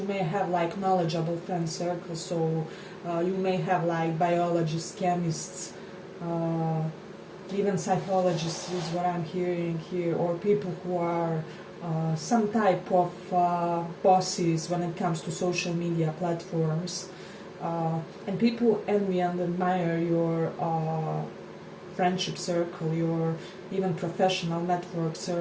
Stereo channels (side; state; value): both; identical; correlation 1.00